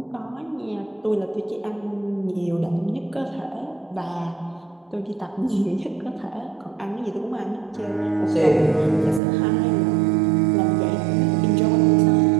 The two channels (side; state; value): left; drops out; at 9.2 s